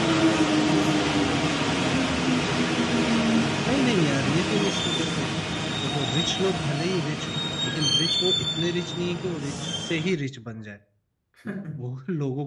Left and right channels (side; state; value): both; identical; correlation 1.00